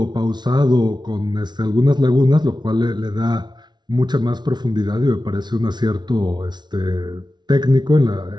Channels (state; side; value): late; left; 0.20 ms